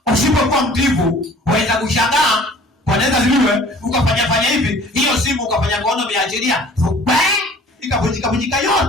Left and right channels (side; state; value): both; normal; correlation 0.49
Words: Usipokuwa mtiifu, waweza kushangaa. Bwana Yesu asifiwe. Ukafanya hivi, hiyo simu ukafanya kono umeachilia. Ikavunjika yote.